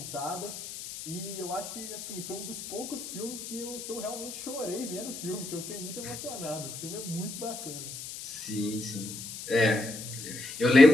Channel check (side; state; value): left; noise; hiss, 9 dB below the sound